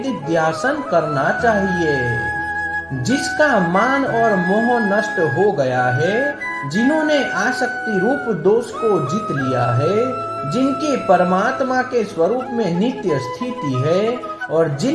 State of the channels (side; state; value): both; identical; correlation 1.00